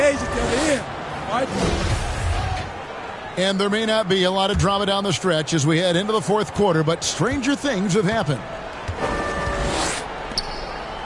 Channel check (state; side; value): identical; both; correlation 1.00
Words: at the other end. All right? And there may not be a lot of drama down the stretch as we head into the fourth quarter, but stranger things have happened.